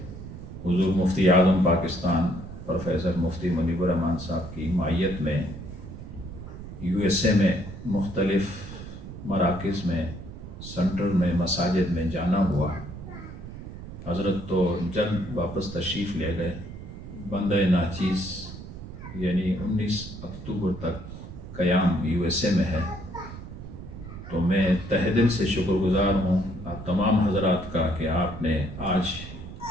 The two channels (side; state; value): right; noise; rumble, 12 dB below the sound